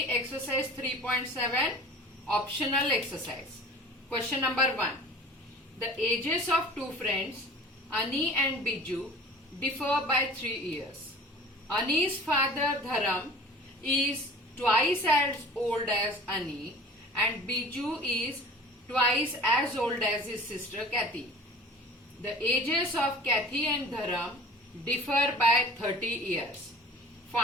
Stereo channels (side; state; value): both; normal; correlation 0.43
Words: exercise 3.7 optional exercise. Question number 1. The ages of two friends, Ani and Biju, differ by 3 years. Ani's father Dharam is twice as old as Ani and Biju is twice as old as his sister Kathy. The ages of Kathy and Dharam differ by 30 years.